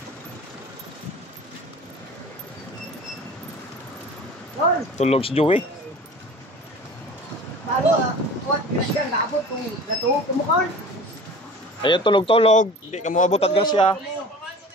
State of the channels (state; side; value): normal; both; correlation 0.40